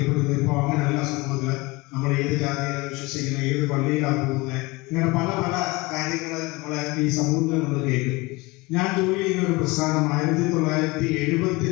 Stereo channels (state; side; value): quieter; right; 23.6 dB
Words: ഇപ്പൊ അങ്ങനെയല്ല സമൂഹത്തില്. നമ്മൾ ഏത് ജാതിയിലാണ് വിശ്വസിക്കുന്നത്, ഏത് പള്ളിയിലാണ് പോകുന്നത്, ഇങ്ങനെ പല പല കാര്യങ്ങൾ നമ്മളെ ഈ സമൂഹത്തിൽ നമ്മൾ കേൾക്കും. ഞാൻ ജോലി ചെയ്യുന്ന ഒരു പ്രസ്ഥാനം